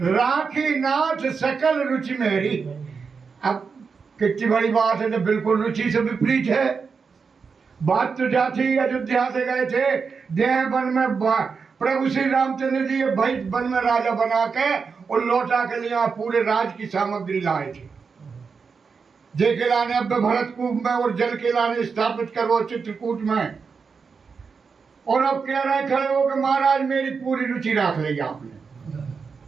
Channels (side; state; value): left; quieter; 5.4 dB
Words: राखी नाथ सकल रुचि मेरी। अब कितनी बड़ी बात है, तो बिल्कुल रुचि से विपरीत है बात। तो जाती अयोध्या से गए थे, देह वन में प्रभु श्री रामचंद्र जी भाई वन में राजा बना के और लौटा के लिए पूरे राज की सामग्री लाए थे। जय के लाने अब भरत कूप में और जल के लाने स्थापित करो चित्रकूट में। और अब कह रहे खड़े हो कि महाराज मेरी पूरी रुचि रख ली आपने।